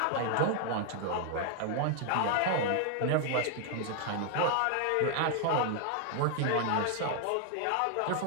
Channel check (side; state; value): both; different; correlation 0.00